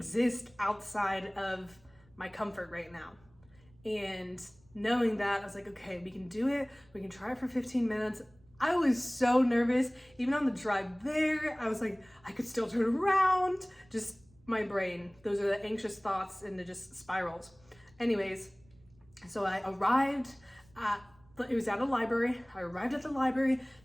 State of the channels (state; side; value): noise; right; rumble, 29 dB below the sound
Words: outside of my comfort right now. And knowing that, I was like, okay, we can do it. We can try it for 15 minutes. I was so nervous. Even on the drive there, I was like, I could still turn around. Just my brain. Those are the anxious thoughts and it just spirals. Anyways, so I arrived at, it was at a library. I arrived at the library and